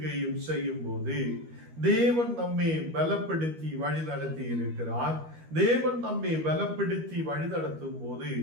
செய்யும் போது தேவன் நம்மை பலப்படுத்தி வழி நடத்தி இருக்கிறார். தேவன் நம்மை பலப்படுத்தி வழி நடத்தும் போது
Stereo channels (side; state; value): left; late; 13 ms